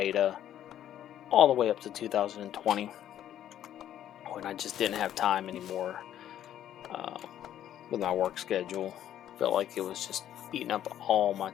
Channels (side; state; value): right; quieter; 11.2 dB